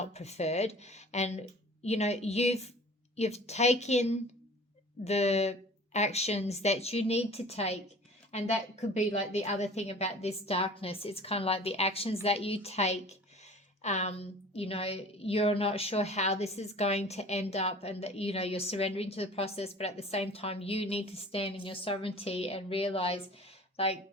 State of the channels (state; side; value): normal; both; correlation 0.44